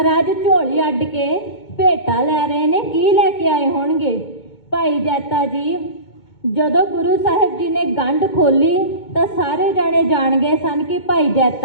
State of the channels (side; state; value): right; late; 2.2 ms